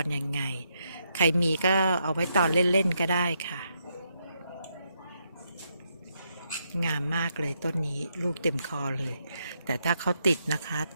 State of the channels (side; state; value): both; inverted; correlation -0.79